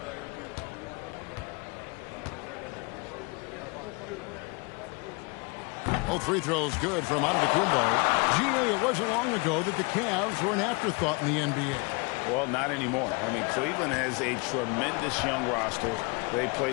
Both free throws good from Antetokounmpo. GA, it wasn't long ago that the Cavs were an afterthought in the NBA. Well, not anymore. I mean, Cleveland has a tremendous young roster. They play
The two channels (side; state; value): right; quieter; 29.7 dB